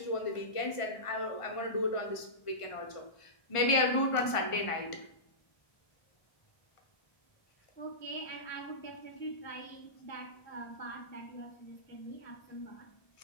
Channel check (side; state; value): right; late; 1.5 ms